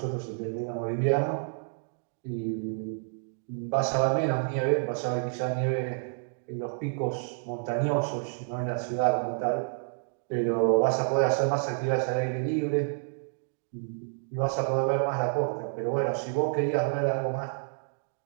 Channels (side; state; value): left; silent; digital silence